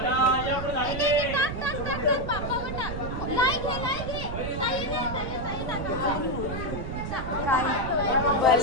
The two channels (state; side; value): noise; right; rumble, 6 dB below the sound